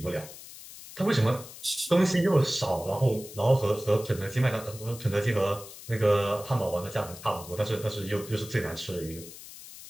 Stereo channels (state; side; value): noise; left; hiss, 15 dB below the sound